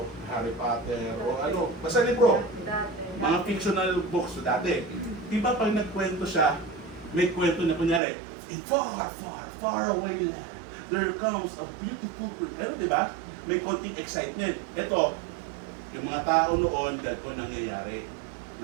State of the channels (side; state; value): left; drops out; at 8.0 s